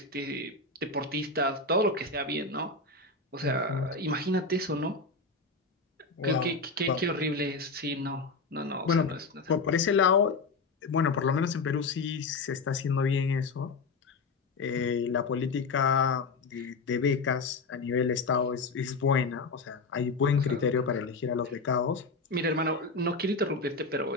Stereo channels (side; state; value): right; quieter; 3.9 dB